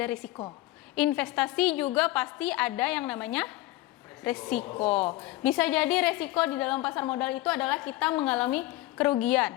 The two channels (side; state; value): right; quieter; 17.3 dB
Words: risiko. Investasi juga pasti ada yang namanya resiko. Bisa jadi resiko di dalam pasar modal itu adalah kita mengalami